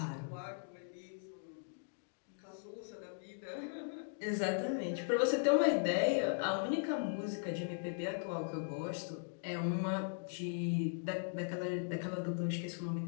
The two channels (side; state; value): right; silent; digital silence